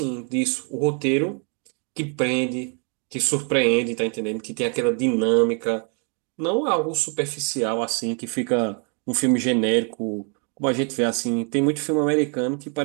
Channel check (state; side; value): quieter; left; 38.9 dB